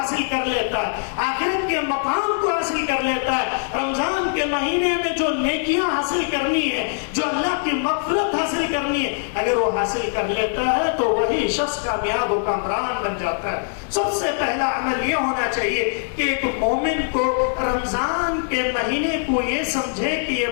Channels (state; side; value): silent; right; digital silence